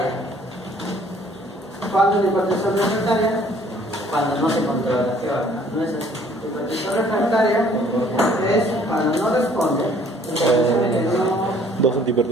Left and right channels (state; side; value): normal; both; correlation 0.58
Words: ¿Cuándo es la hipertensión refractaria? Cuando no se controla. ¿Qué va? No es así. La hipertensión refractaria es cuando no responde. Dos